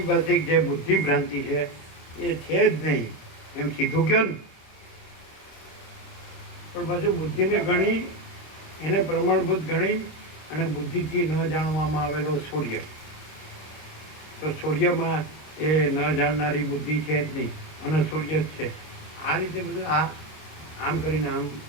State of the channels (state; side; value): late; right; 26 ms